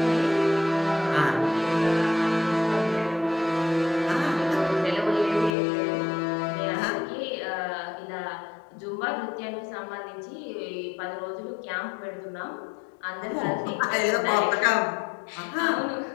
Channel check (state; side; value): drops out; right; at 5.6 s